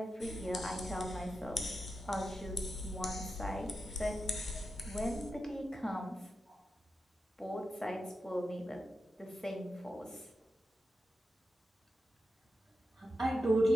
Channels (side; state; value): both; normal; correlation 0.89